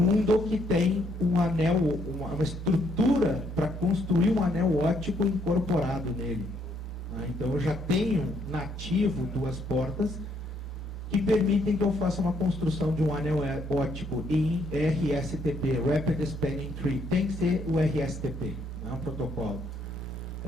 que tem um anel, uma estrutura para construir um anel óptico incorporado nele. Então eu já tenho nativo 2 portas que permitem que eu faça uma construção de um anel óptico em RSTP, Rapid Spanning Tree. Tem que ser o RSTP, é um protocolo.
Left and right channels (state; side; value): normal; both; correlation 0.70